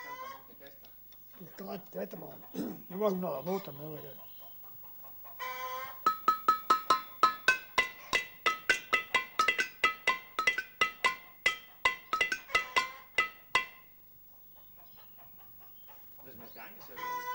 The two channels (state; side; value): identical; both; correlation 1.00